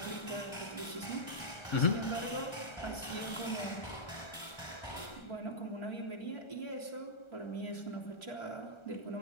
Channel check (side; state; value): right; late; 1.3 ms